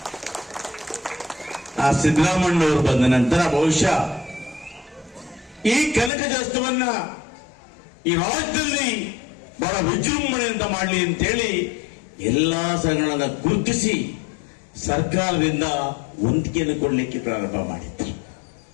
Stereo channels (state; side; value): drops out; right; at 6.1 s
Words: ಆ ಸಿದ್ದರಾಮಣ್ಣವರು ಬಂದ ನಂತರ ಬಹುಶಃ ಈ ಕನಕದಾಸವನ್ನ ಈ ರಾಜ್ಯದಲ್ಲಿ ಬಹಳ ವಿಜೃಂಭಣೆಯಿಂದ ಮಾಡಲಿ ಅಂತೇಳಿ ಎಲ್ಲಾ ಸಂಘಗಳನ್ನ ಗುರುತಿಸಿ ಸರ್ಕಾರದಿಂದ ವಂತಿಗೆಯನ್ನು ಕೊಡಲಿಕ್ಕೆ ಪ್ರಾರಂಭ ಮಾಡಿದ್ರು.